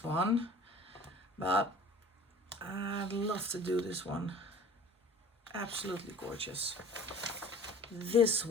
one. But I'd love to do this one. Absolutely gorgeous. This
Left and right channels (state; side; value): normal; both; correlation 0.46